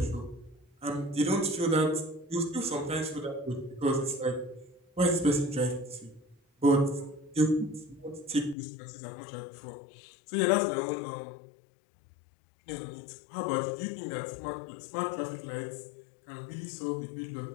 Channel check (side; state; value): right; drops out; at 8.6 s